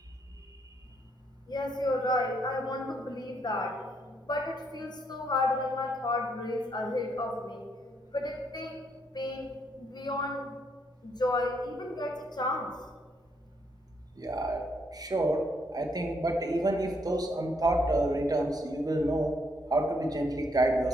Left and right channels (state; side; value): normal; both; correlation 0.73